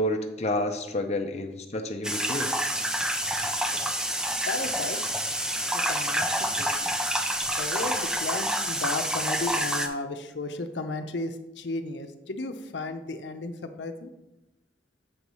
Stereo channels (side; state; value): both; normal; correlation 0.33